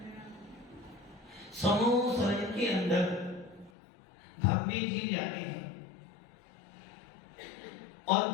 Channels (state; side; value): drops out; right; at 3.7 s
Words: संसार के अंदर भव्य जीव जाते हैं, और